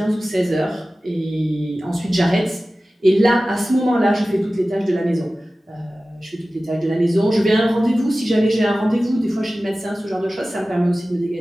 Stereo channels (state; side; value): normal; both; correlation 0.96